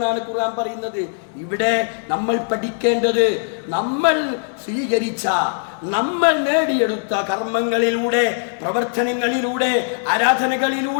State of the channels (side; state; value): right; silent; digital silence